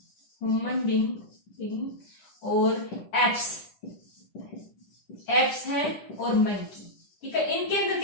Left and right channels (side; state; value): right; late; 10 ms